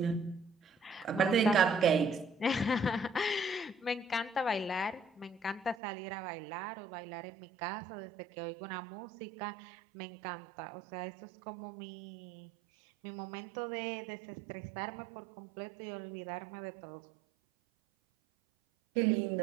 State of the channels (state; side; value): drops out; left; at 5.8 s